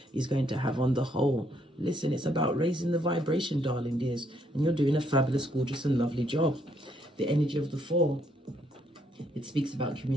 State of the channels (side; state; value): both; normal; correlation 0.71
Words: is going to have on the whole. Listen, it's about raising the vibration, darling dears, and you're doing a fabulous, gorgeous and lovely job. The energy of the 4, it speaks about